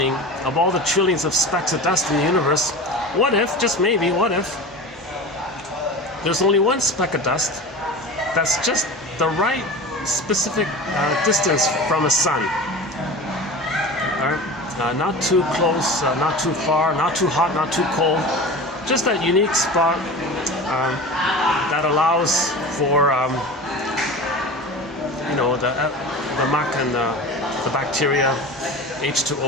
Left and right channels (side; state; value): both; normal; correlation 0.33